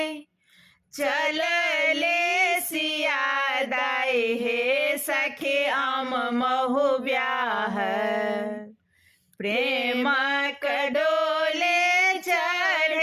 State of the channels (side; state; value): both; identical; correlation 1.00